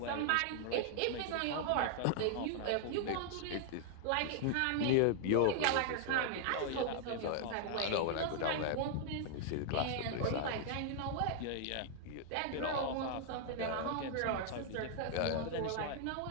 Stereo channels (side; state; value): both; different; correlation -0.01